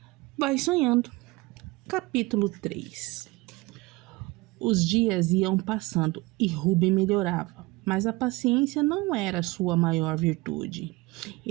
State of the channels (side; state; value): left; quieter; 22.4 dB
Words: Vai Sonhando, capítulo 3. Os dias iam passando e Ruben melhorava, mas a paciência não era sua maior virtude.